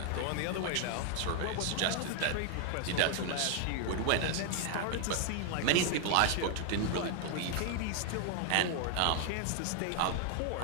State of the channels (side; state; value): both; different; correlation 0.00